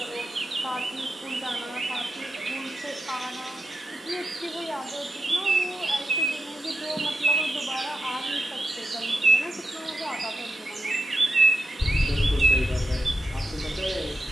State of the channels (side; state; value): both; normal; correlation 0.88